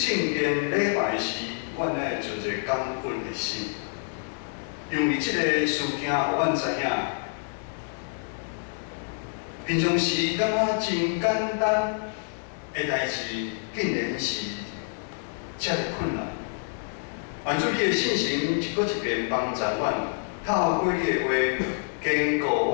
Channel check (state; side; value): silent; right; digital silence